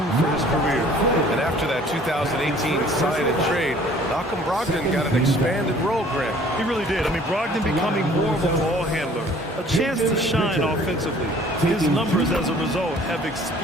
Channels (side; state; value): both; normal; correlation 0.53